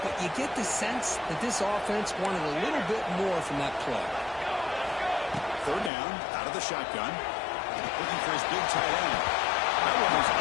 you get the sense that this offense wanted a little bit more from that play. 3rd down, out of the shotgun. Looking for his big tight end. That one was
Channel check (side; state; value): right; drops out; at 5.9 s